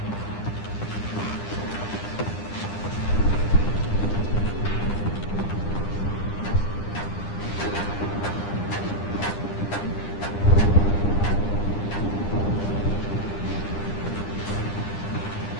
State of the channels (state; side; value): late; right; 9.9 ms